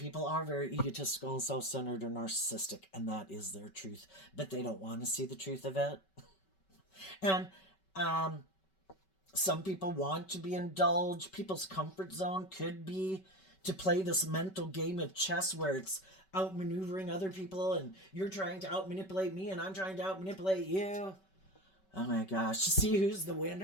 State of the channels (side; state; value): right; late; 5.2 ms